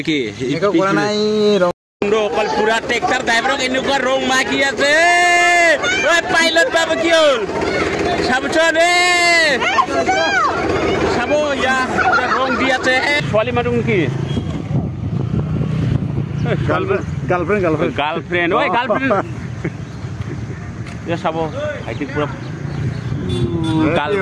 মেকআপ কৰা নাই অকল পুৰা ট্ৰেক্টৰ ড্ৰাইভাৰক এনেকুৱা ৰং মাকি আছে ঐ পাইলট বাবু কি হ'ল চাবচোন চাব ইয়া ৰং দি আছে ছোৱালী মানুহ নেকি গাৰ্লফ্ৰেণ্ড ঐ গাৰ্লফ্ৰেণ্ড ইয়া চাব ভাইটি পুৰা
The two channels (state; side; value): identical; both; correlation 1.00